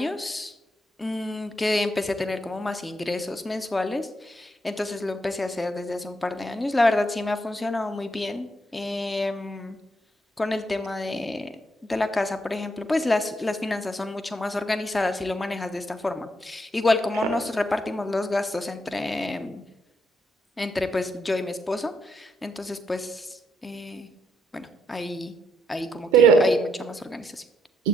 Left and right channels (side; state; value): both; normal; correlation 0.76